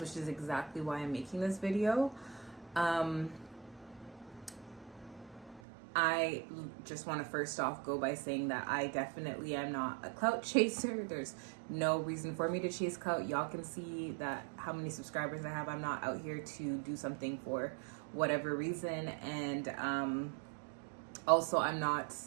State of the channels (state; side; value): drops out; left; at 5.6 s